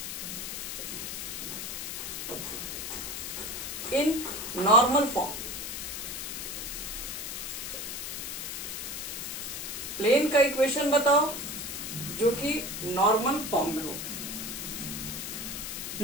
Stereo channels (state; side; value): noise; left; hiss, 5 dB below the sound